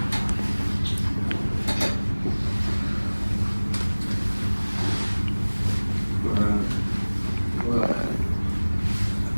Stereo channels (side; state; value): both; inverted; correlation -1.00